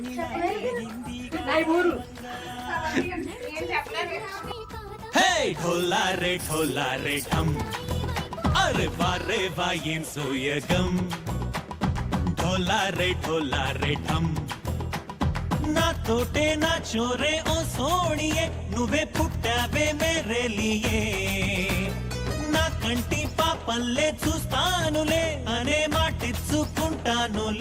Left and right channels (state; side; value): identical; both; correlation 1.00